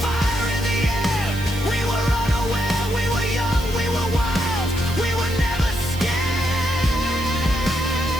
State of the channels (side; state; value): right; noise; hiss, 16 dB below the sound